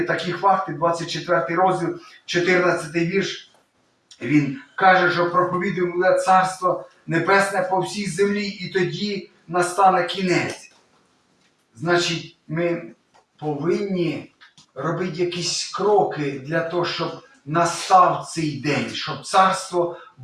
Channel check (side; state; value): both; identical; correlation 1.00